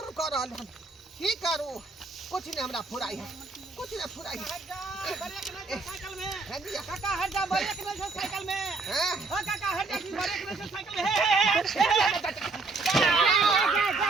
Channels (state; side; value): quieter; left; 3.9 dB